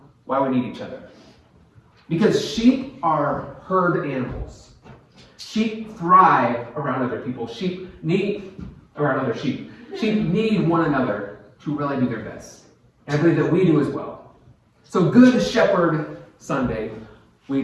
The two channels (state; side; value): identical; both; correlation 1.00